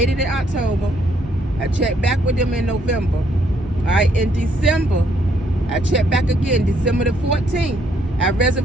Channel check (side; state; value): both; normal; correlation 0.70